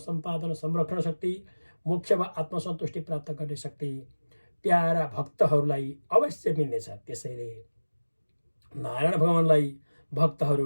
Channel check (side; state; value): both; inverted; correlation -1.00